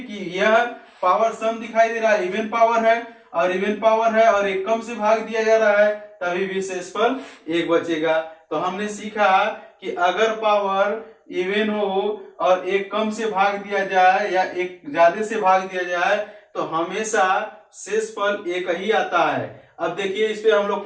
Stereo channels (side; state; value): both; identical; correlation 1.00